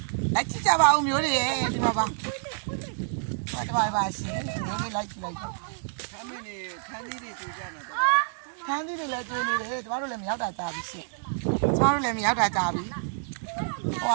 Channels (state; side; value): silent; left; digital silence